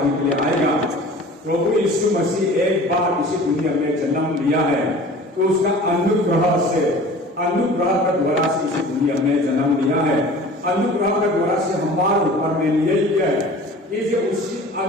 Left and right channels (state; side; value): normal; both; correlation 0.43